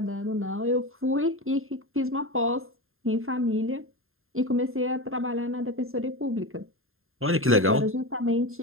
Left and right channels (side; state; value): left; late; 0.61 ms